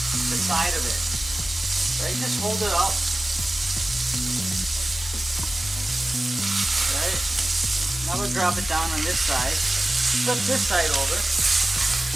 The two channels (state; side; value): normal; both; correlation 0.96